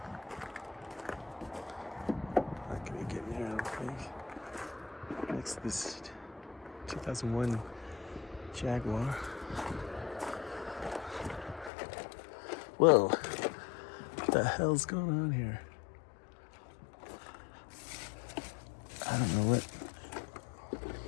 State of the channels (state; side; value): drops out; right; at 11.7 s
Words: Not gonna get in here, I don't think. Next to this 2001 Jaguar. Whoa, what the hell's going on here? I don't know